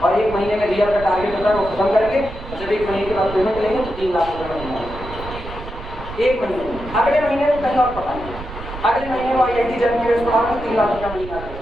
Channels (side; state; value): right; noise; rumble, 12 dB below the sound